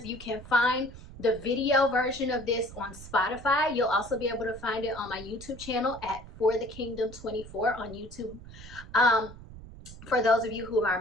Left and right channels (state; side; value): noise; right; rumble, 16 dB below the sound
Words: you can find the video version of this on Spotify. You'll also be able to find it on my YouTube channel at For the Kingdom 24 on YouTube. For those of you who are